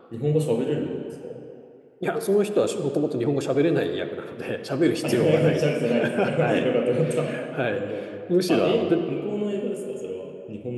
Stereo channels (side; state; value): both; identical; correlation 1.00